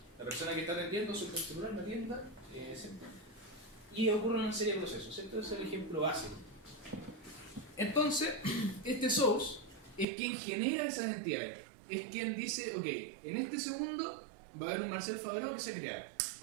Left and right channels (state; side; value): drops out; left; at 10.1 s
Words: persona que está atendiendo su celular me atienda, ¿cierto? Y ocurre una serie de procesos, ¿cierto? Ese es el ejemplo básico. Entonces, este source es quien genera esas entidades. Es quien dice, ok, en este segundo va a haber un Marcel Fabreau que se crea.